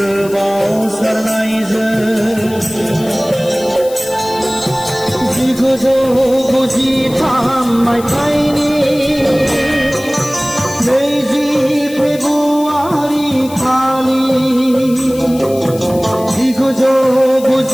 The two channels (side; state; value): left; noise; hiss, 17 dB below the sound